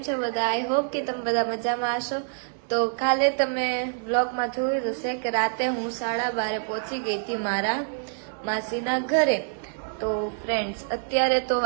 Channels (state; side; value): silent; left; 61 dB below the other